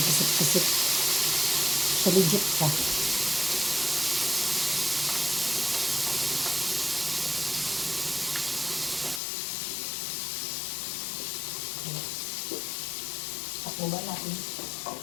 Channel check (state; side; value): drops out; right; at 9.2 s